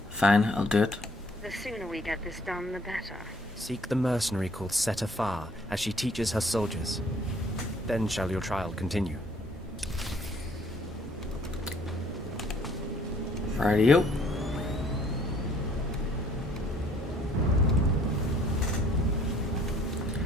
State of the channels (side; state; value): both; normal; correlation 0.60